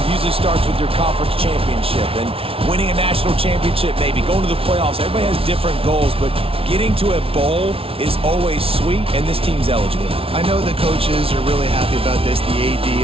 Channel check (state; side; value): late; left; 0.26 ms